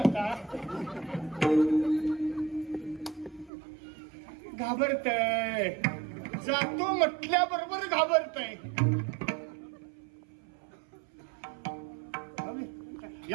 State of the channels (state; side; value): drops out; left; at 3.5 s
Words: घाबरतय. जातो म्हटल्याबरोबर घाबरतय.